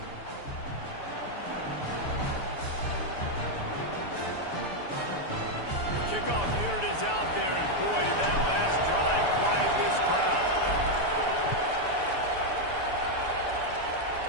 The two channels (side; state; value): right; late; 6.8 ms